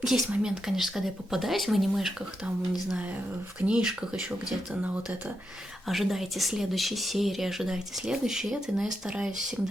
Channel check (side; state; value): both; normal; correlation 0.85